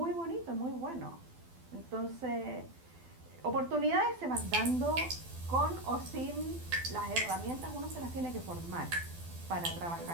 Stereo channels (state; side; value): late; left; 12 ms